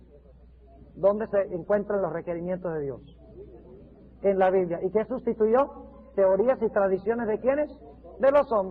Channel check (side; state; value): both; identical; correlation 1.00